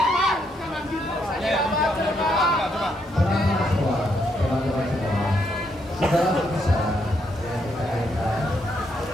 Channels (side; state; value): both; normal; correlation 0.76